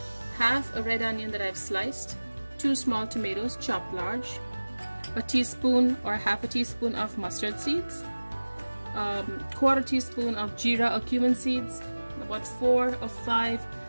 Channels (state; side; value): inverted; both; correlation -1.00